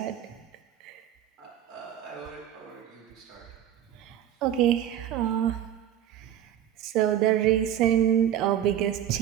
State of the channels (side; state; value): left; quieter; 10.8 dB